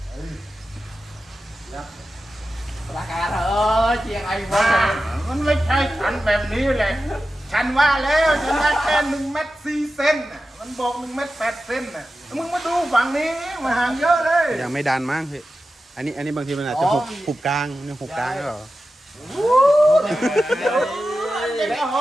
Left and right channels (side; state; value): both; normal; correlation 0.93